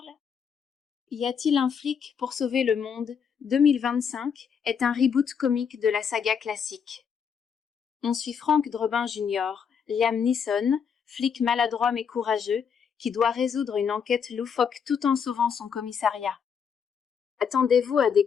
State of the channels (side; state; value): right; quieter; 6.9 dB